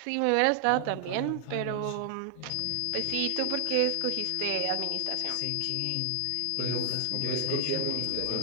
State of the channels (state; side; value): different; both; correlation 0.00